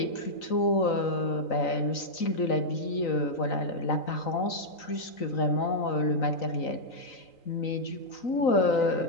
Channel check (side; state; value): right; late; 3.9 ms